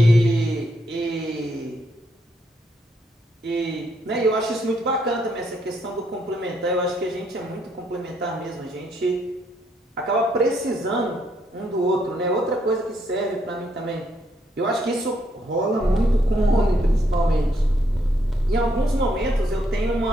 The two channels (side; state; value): both; normal; correlation 0.74